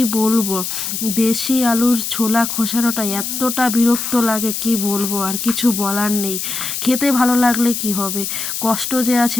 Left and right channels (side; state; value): left; noise; hiss, 4 dB below the sound